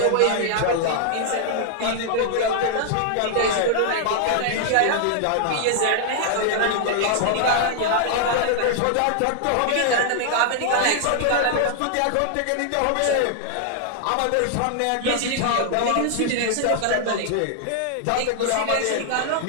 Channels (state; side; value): different; both; correlation -0.01